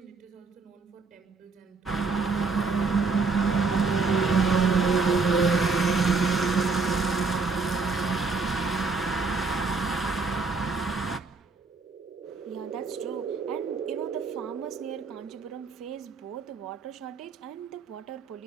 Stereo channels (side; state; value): left; quieter; 4.3 dB